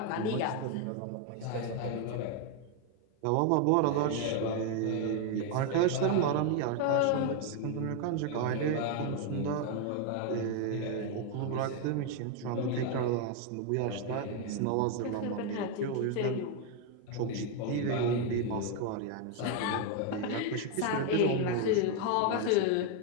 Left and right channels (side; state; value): both; different; correlation 0.01